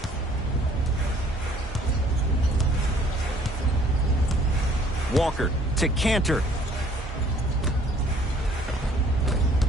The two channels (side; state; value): both; normal; correlation 0.58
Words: Walker to Cantor.